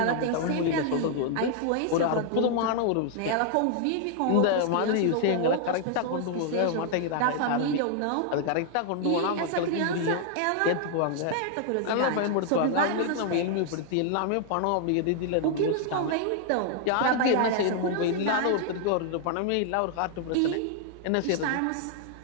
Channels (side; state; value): both; different; correlation 0.00